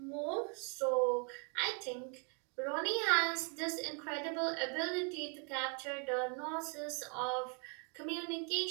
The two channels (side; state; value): left; quieter; 37.9 dB